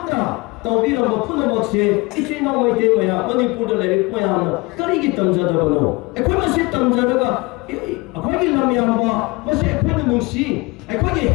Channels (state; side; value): quieter; right; 24.8 dB